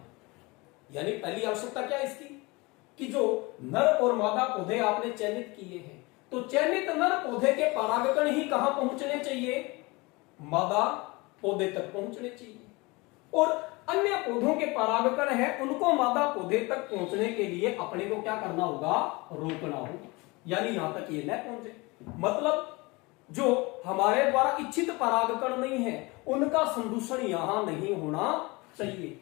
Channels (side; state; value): right; quieter; 24.7 dB